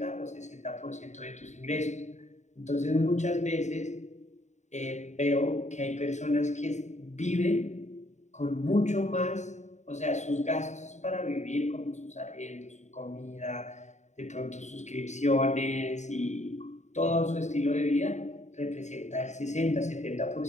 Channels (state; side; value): late; right; 0.34 ms